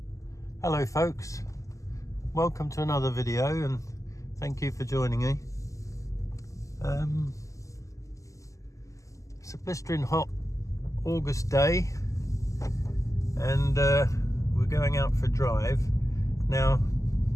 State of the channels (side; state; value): right; late; 0.16 ms